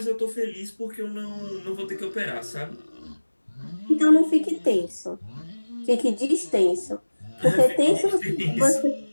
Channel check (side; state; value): both; inverted; correlation -1.00